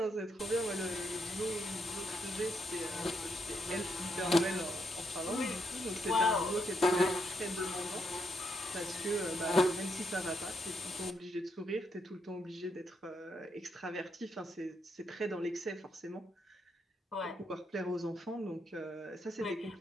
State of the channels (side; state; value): both; normal; correlation 0.78